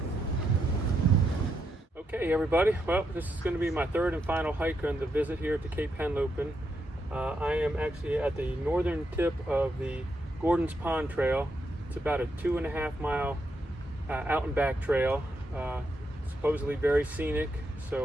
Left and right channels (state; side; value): normal; both; correlation 0.81